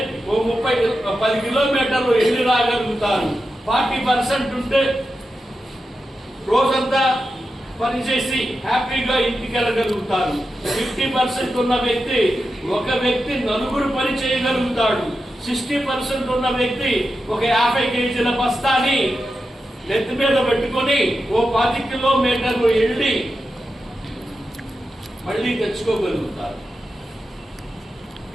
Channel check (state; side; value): normal; both; correlation 0.90